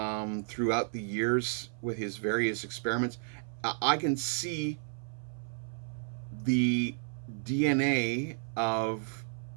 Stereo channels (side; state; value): left; silent; 56 dB below the other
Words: throughout the years with his various experiments. I can see the DNA of